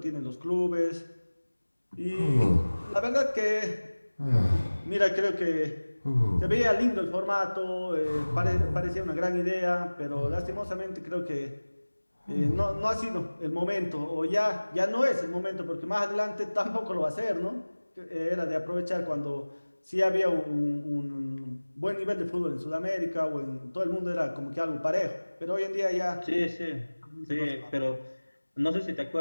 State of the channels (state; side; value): inverted; both; correlation -1.00